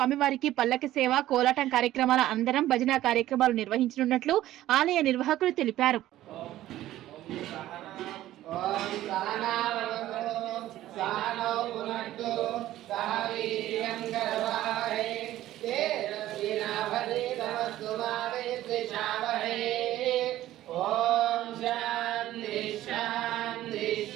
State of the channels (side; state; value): left; quieter; 14.3 dB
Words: పల్లకి సేవ, కోలాటం కార్యక్రమాల అందరం భజన కార్యక్రమాలు నిర్వహించనున్నట్లు ఆలయ నిర్వాహకులు తెలిపారు.